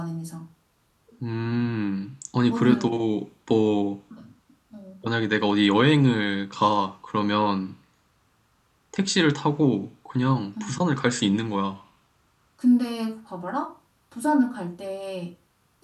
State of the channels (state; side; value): identical; both; correlation 1.00